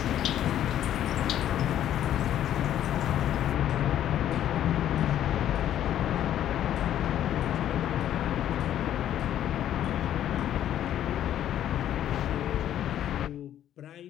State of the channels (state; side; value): quieter; right; 11.2 dB